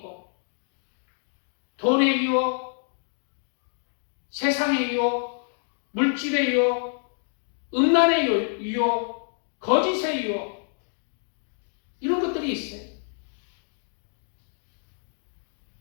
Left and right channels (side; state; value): right; silent; 56 dB below the other